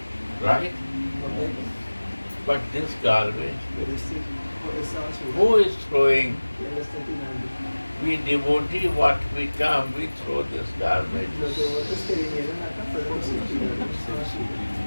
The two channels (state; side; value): inverted; both; correlation -1.00